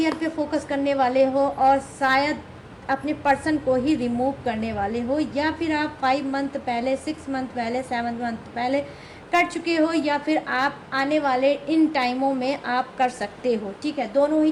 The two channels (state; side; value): identical; both; correlation 1.00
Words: पे फोकस करने वाले हो और शायद अपने पर्सन को ही रिमूव करने वाले हो, या फिर आप 5 मंथ पहले, 6 मंथ पहले, 7 मंथ पहले कर चुके हो, या फिर आप आने वाले इन टाइमों में आप कर सकते हो। ठीक है, दोनों ही